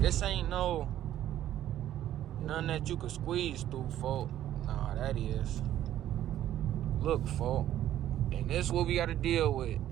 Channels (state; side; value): quieter; left; 12.3 dB